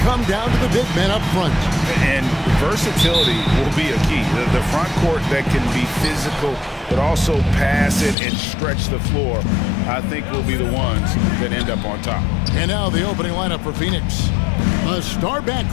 come down to the big men up front. And versatility will be a key. The front court that can be physical, but also pass it and stretch the floor, I think will be the ones that end up on top. And now the opening lineup for Phoenix. A star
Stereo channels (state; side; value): drops out; right; at 8.2 s